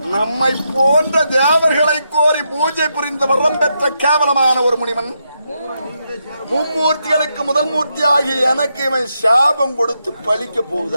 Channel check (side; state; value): both; inverted; correlation -0.82